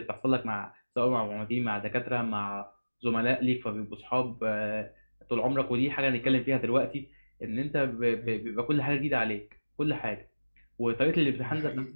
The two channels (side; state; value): both; inverted; correlation -1.00